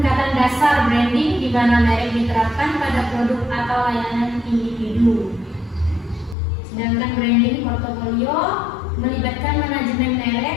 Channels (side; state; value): right; drops out; at 6.4 s